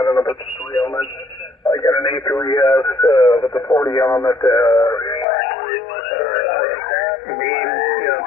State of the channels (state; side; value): drops out; right; at 5.2 s